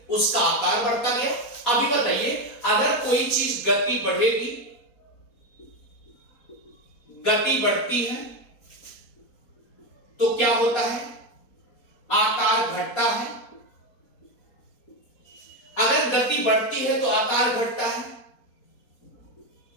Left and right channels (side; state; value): right; late; 4.2 ms